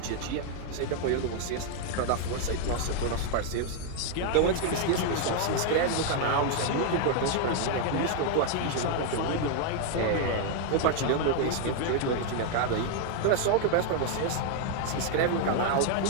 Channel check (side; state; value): both; different; correlation 0.00